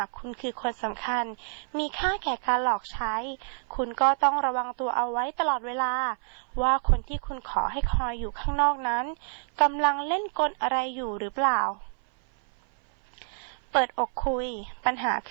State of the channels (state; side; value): silent; left; 56 dB below the other